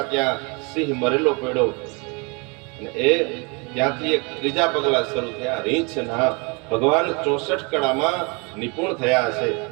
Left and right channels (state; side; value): quieter; left; 30.9 dB